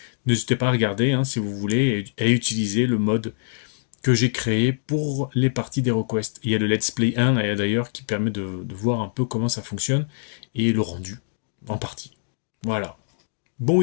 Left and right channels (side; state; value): right; silent; 62 dB below the other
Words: N'hésitez pas à regarder hein, si vous voulez et à utiliser le mode que j'ai créé pour les parties d'HeroQuest. Il y a le Let's Play 1 d'ailleurs qui permet de voir un peu comment ça fonctionne et le rendu en partie. Voilà. Bon